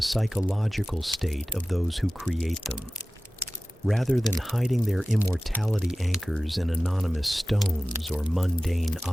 psychological state of those who create them. Rather than hiding their immortality anchors in anonymous stones or mundane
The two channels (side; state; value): both; normal; correlation 0.96